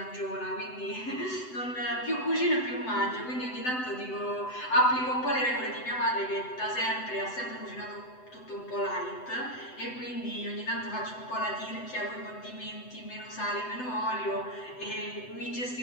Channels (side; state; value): right; late; 7.9 ms